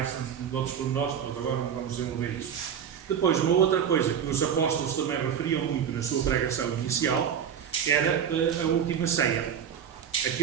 de outros pormenores, mas agora não vamos desenvolver isso. Depois, uma outra coisa que os apóstolos também referiam muito na sua pregação inicial era a última ceia.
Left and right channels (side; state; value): left; quieter; 8.2 dB